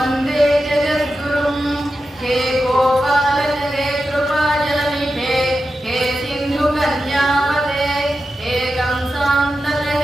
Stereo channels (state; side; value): normal; both; correlation 0.91